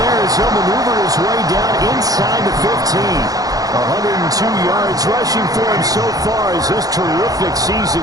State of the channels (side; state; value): left; late; 0.18 ms